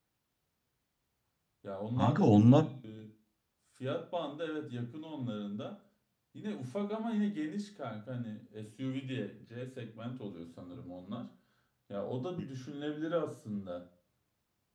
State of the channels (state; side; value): identical; both; correlation 1.00